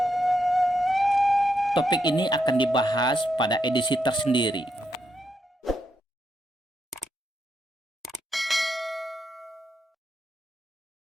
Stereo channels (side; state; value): both; normal; correlation 0.81